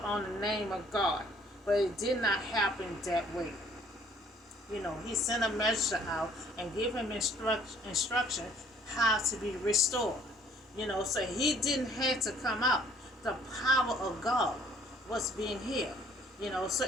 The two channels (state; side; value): normal; both; correlation 0.59